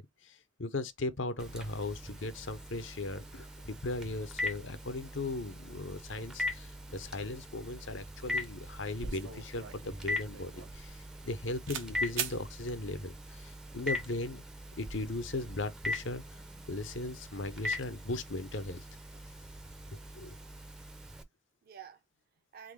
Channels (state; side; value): normal; both; correlation 0.34